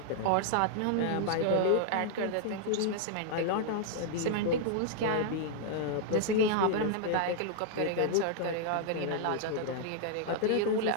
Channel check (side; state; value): both; different; correlation -0.01